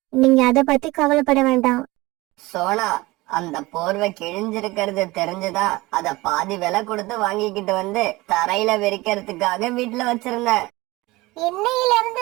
நீங்க அதை பத்தி கவலைப்பட வேண்டாம். சோனா, அந்த போர்வை கிழிஞ்சிருக்கிறது தெரிஞ்சுதா அத பாதி விலை கொடுத்து வாங்கிக்கிட்டு வந்து தரையில விரிக்கிறதுக்காக வீட்டுல வச்சிருந்தேன். இன்னையில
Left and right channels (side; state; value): left; quieter; 21.0 dB